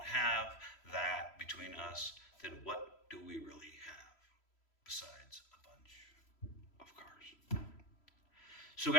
have that between us, then what do we really have besides a bunch of cars? So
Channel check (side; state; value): right; late; 3.0 ms